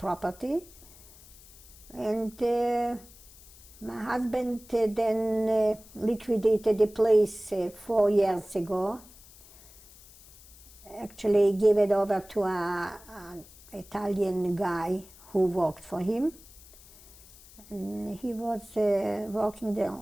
And my husband then liquidated the place 4 years ago. Actually gave it over to an Italian guy who worked for him. And he was working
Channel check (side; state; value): left; noise; hiss, 22 dB below the sound